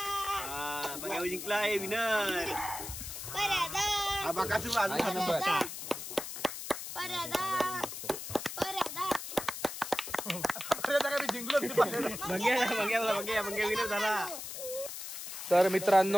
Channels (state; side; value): noise; left; hiss, 8 dB below the sound